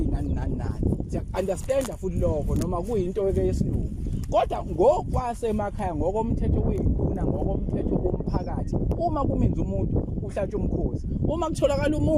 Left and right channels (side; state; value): both; identical; correlation 1.00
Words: nani siya understand futhi lokho noma kuyinto yesilungu kodwa ngokwasemakhaya ngokomthetho weyiquna ngokomthetho womphakathi uma kumenza umuntu uhlatshwa umkhosi uma kutholakala